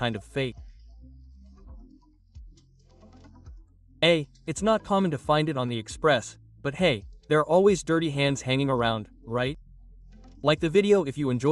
of fake. It's not common to find it on the Express, but hey, there are always dirty hands hanging around, right? Like the video if you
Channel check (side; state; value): both; identical; correlation 1.00